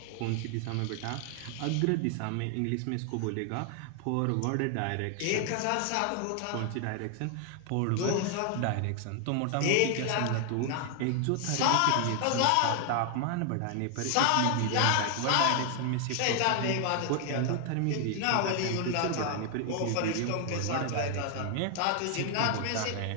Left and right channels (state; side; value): different; both; correlation 0.00